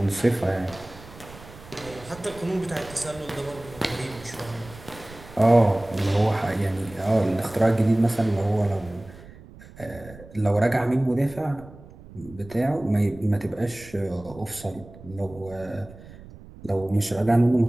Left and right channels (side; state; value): right; noise; rumble, 19 dB below the sound